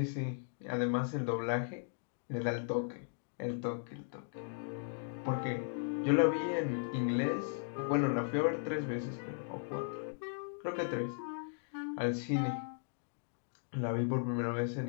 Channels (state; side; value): silent; right; digital silence